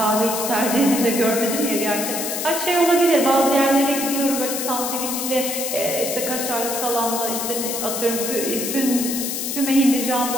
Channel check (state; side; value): noise; left; hiss, 3 dB below the sound